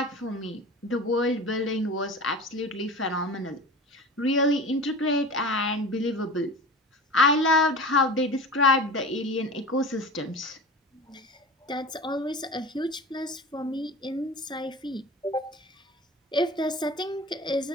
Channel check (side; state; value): both; normal; correlation 0.34